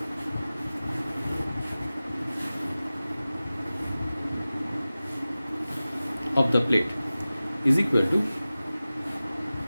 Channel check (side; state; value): both; inverted; correlation -0.96